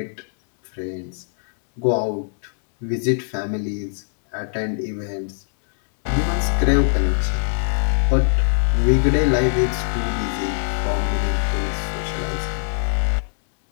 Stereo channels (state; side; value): silent; right; digital silence